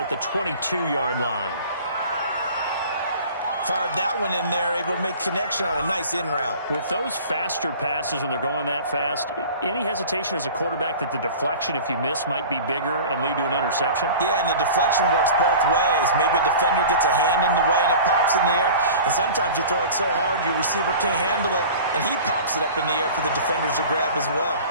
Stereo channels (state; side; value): inverted; both; correlation -0.40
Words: the 22-yard line. Fired that one in there, able to make connection on a nice in route. With those faster passes when they're going that fast, any hesitation as a quarterback that the deflection, if you miss, might be bigger and lead to an interception? Yeah, and the deflection works both ways. Maybe a defender gets a hand in the way and it pops in the air. And sometimes you throw it so hard your receiver can't handle it, and he pops it up in the air for the defenders to grab as well.